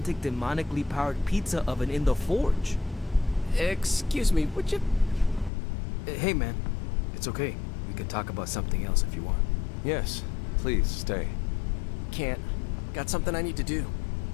demonically powered pizza oven in the forge. Excuse me, would you... Hey man, it's okay. We can talk about something else if you want. Yes, please stay. Can't. Got something I need to do.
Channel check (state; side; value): drops out; right; at 5.5 s